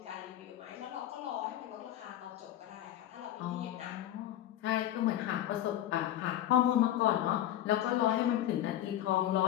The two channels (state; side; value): quieter; right; 12.5 dB